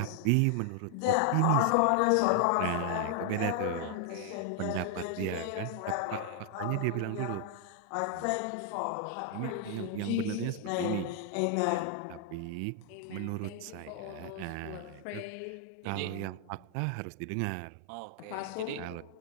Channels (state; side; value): different; both; correlation 0.00